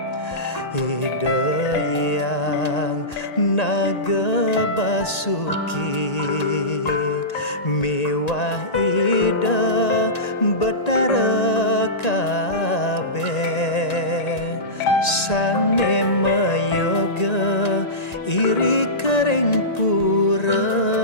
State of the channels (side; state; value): right; late; 1.9 ms